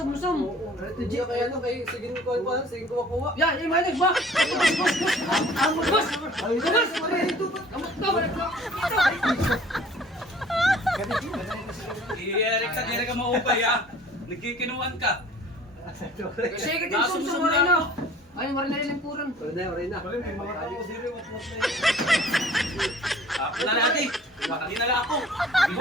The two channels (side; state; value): both; normal; correlation 0.50